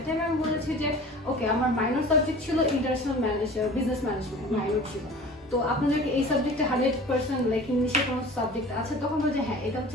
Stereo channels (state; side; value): normal; both; correlation 0.41